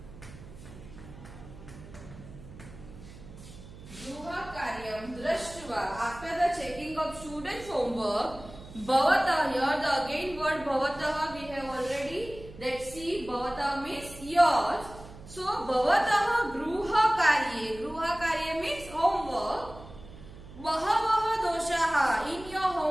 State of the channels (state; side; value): noise; right; hum, 17 dB below the sound